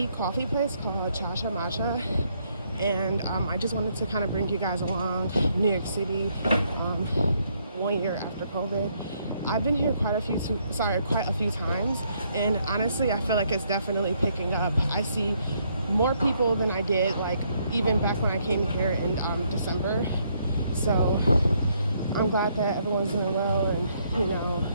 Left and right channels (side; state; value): both; inverted; correlation -0.71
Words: coffee place called Cha Matcha, and I just wanted to kind of bring you guys along New York City 1 year after COVID. I've been here quite a few times, and honestly I feel like it's definitely picking up. I see more people than I did like even back when I came here in December. So I'm glad that everyone's doing well and, you know,